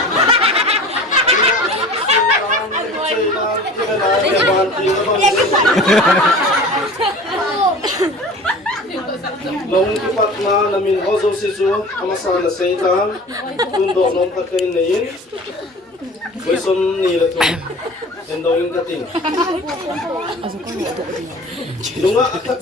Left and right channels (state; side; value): normal; both; correlation 0.40